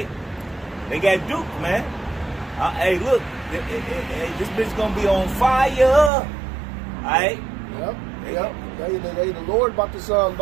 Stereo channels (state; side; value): drops out; left; at 6.1 s